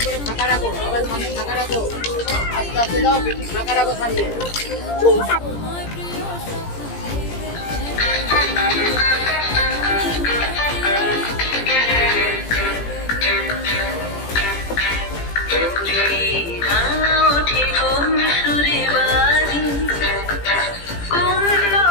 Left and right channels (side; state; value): right; late; 17 ms